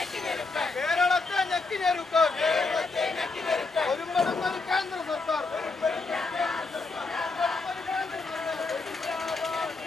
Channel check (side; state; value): right; quieter; 3.9 dB